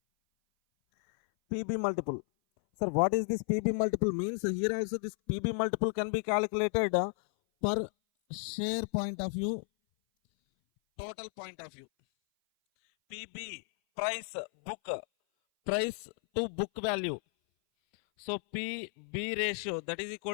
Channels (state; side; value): silent; right; 56 dB below the other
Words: PB multiple. Sir, what is this PB multiple means? Here also this PB multiple can be calculated per share point of view, total point of view. PB, price to book value. So PB ratio, that is